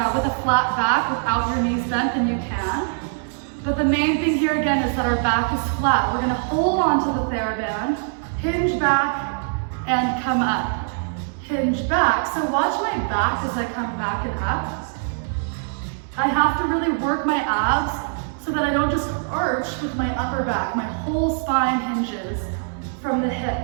with a flat back without your knees bent, then you can. But the main thing here again is that our back is flat. We're going to hold on to the TheraBand, hinge back, and come up. Hinge back. So watch my back as I come back and up. I have to really work my abs so that I don't just arch with my upper back. My whole spine hinges from the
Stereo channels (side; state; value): left; silent; digital silence